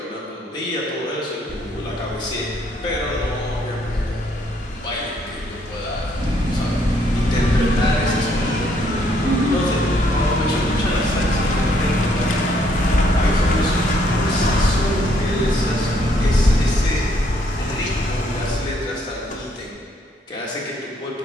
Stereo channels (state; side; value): normal; both; correlation 0.69